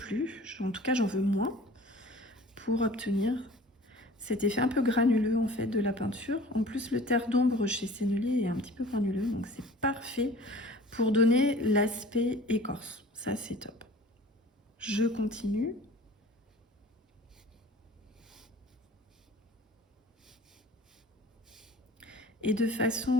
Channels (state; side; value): normal; both; correlation 0.45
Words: en tout cas j'en veux moins, pour obtenir cet effet un peu granuleux en fait de la peinture. En plus, le terre d'ombre chez Sennelier est un petit peu granuleux, donc c'est parfait pour donner l'aspect écorce. Ça, c'est top. Je continue. Et de